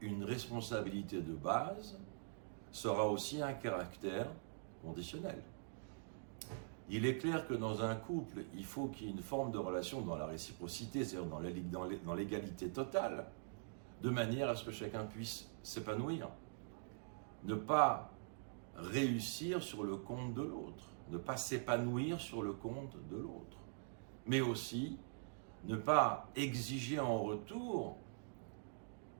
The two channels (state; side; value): silent; left; digital silence